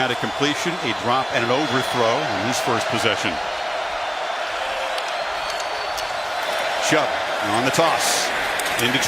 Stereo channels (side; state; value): both; identical; correlation 1.00